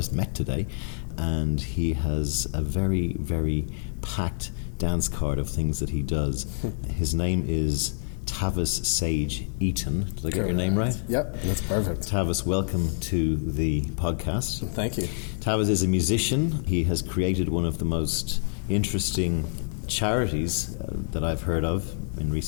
met today, and he has a very, very packed dance card of things that he does. His name is Tavis Sage Eaton. Did I get your name right? Yep, that's perfect. Tavis, welcome to the podcast. Thank you. Tavis is a musician. He has created one of the most interesting charities that I've heard of in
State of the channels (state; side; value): silent; right; digital silence